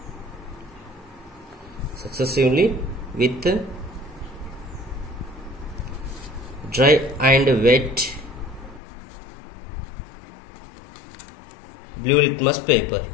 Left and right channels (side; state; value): right; drops out; at 8.8 s